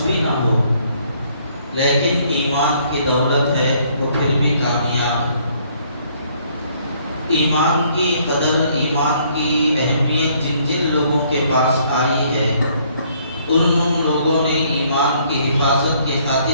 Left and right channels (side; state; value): both; inverted; correlation -0.65